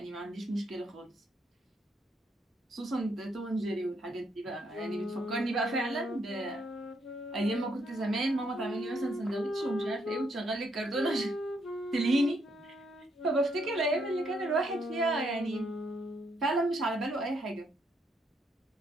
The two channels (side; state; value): both; normal; correlation 0.74